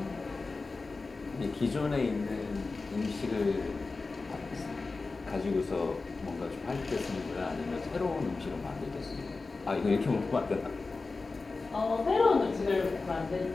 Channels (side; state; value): right; quieter; 3.9 dB